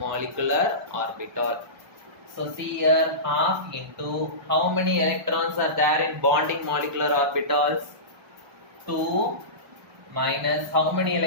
orbital. So see here, half into how many electrons are there in bonding molecular orbitals? 2 minus how many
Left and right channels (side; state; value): left; late; 1.2 ms